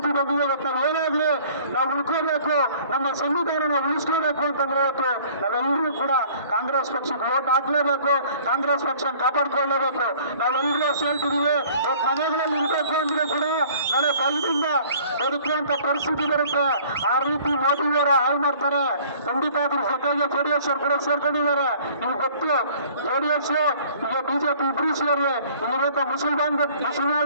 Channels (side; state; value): both; inverted; correlation -0.52